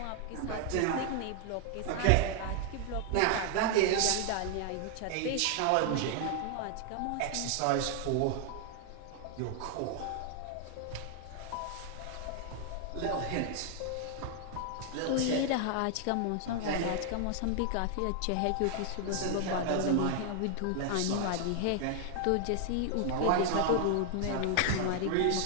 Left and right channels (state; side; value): different; both; correlation 0.00